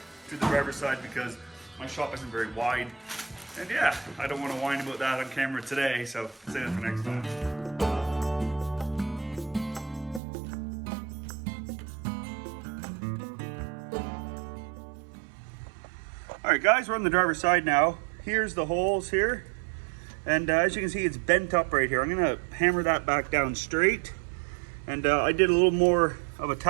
to the driver's side because my shop isn't very wide. And yeah, I don't want to whine about that on camera today, so save it for next time. All right, guys, we're on the driver's side now. Here's the holes here. And as you can see, it's bent up right here. I'm gonna hammer that back down straight. And I did a little more of a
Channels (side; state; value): left; drops out; at 10.2 s